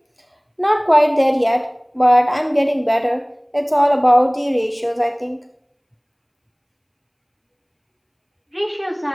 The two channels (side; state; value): both; identical; correlation 1.00